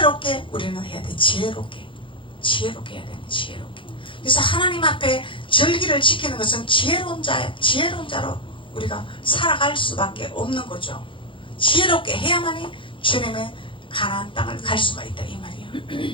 우리는 해야 돼. 지혜롭게 해야 돼. 지혜롭게. 그래서 하나님 앞에 절기를 지키는 것은 지혜로운 자로 우리가 살아갈 수밖에 없는 거죠. 지혜롭게 해야만이 주님의 가나안 땅을 갈 수가 있다 이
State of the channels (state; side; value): late; right; 0.25 ms